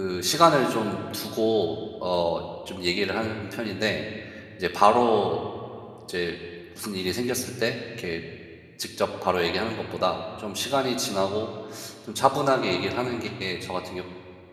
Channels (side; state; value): both; identical; correlation 1.00